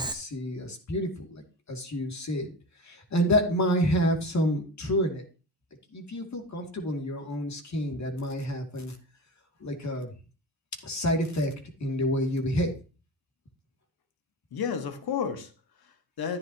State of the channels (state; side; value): normal; both; correlation 0.27